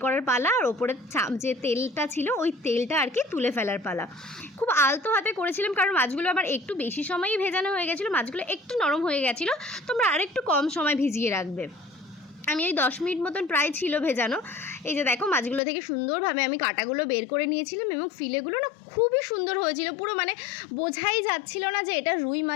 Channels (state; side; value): drops out; right; at 15.6 s